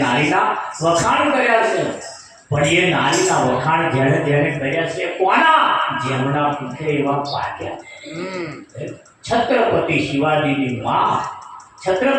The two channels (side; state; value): both; identical; correlation 1.00